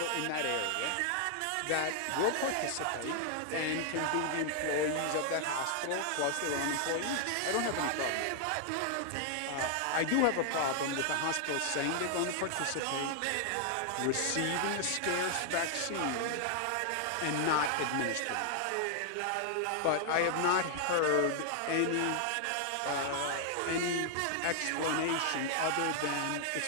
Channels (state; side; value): different; both; correlation 0.00